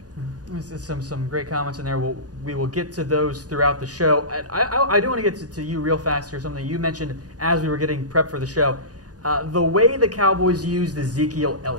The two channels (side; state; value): left; late; 0.68 ms